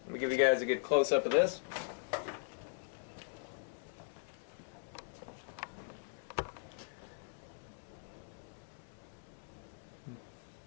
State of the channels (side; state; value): right; silent; digital silence